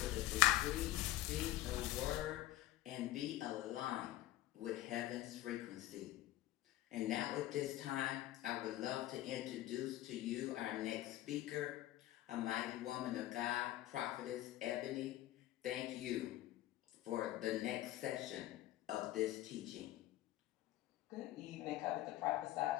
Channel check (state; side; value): quieter; right; 15.2 dB